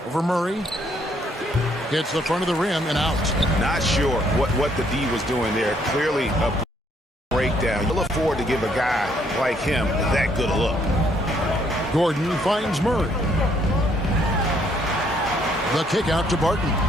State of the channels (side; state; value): both; normal; correlation 0.68